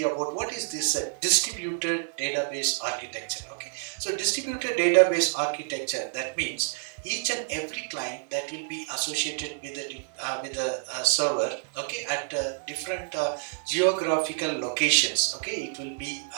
about what is this distributed database architecture. Okay, so distributed database architecture, that means each and every client that will be associated with a server, okay, at different geographical locations, okay, it will be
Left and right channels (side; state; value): left; silent; digital silence